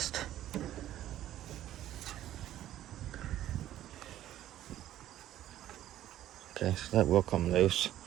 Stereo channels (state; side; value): quieter; left; 12.9 dB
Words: Okay, so that will come loose.